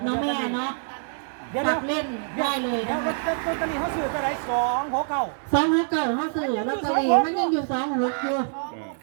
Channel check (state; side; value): silent; left; digital silence